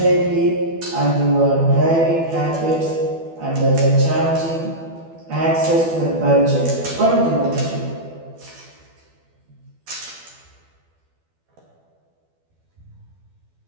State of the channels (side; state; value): left; late; 12 ms